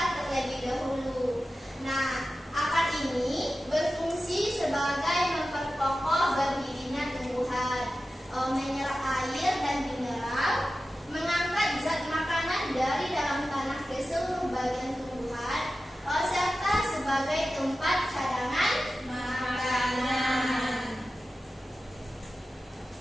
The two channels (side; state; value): both; normal; correlation 0.94